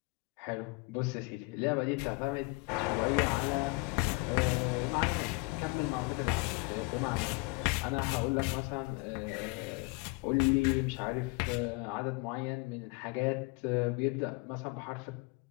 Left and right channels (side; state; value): right; quieter; 27.5 dB